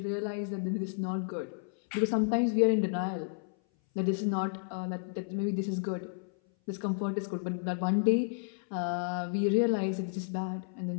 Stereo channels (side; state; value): right; silent; 57 dB below the other